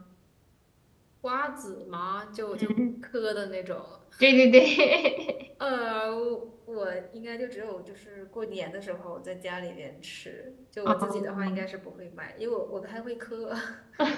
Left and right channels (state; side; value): identical; both; correlation 1.00